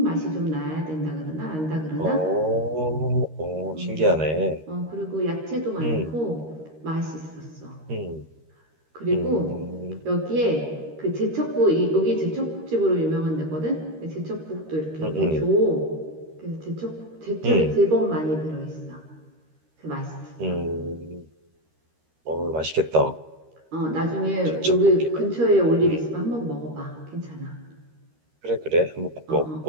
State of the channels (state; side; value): late; left; 13 ms